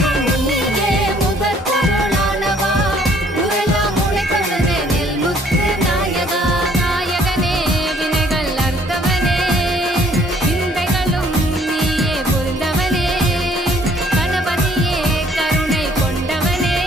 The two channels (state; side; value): normal; both; correlation 0.61